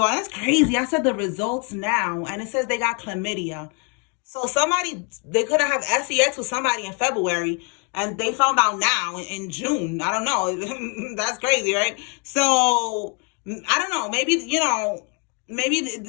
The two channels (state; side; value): quieter; right; 35.0 dB